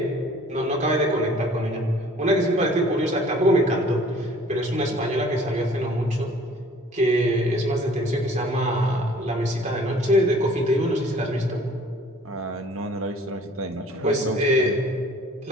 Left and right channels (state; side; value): normal; both; correlation 0.53